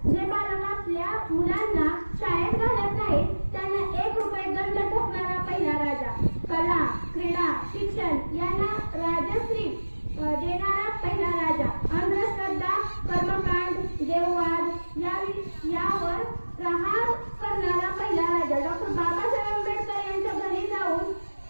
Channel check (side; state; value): both; inverted; correlation -1.00